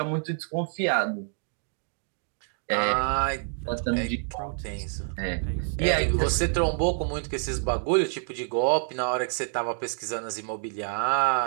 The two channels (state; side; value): silent; left; 60 dB below the other